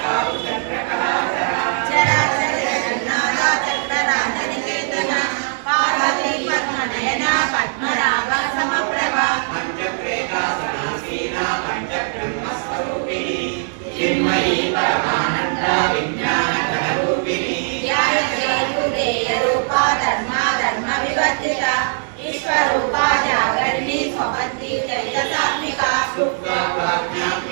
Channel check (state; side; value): silent; left; digital silence